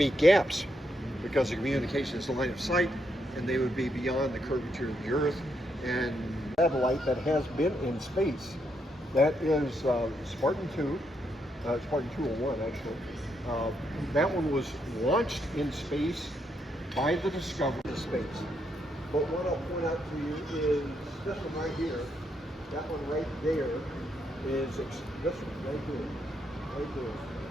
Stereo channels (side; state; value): both; normal; correlation 0.78